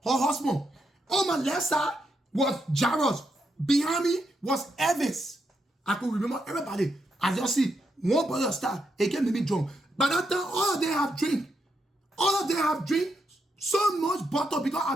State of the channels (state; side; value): normal; both; correlation 0.81